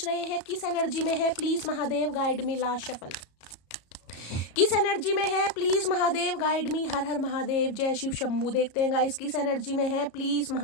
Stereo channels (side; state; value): right; late; 34 ms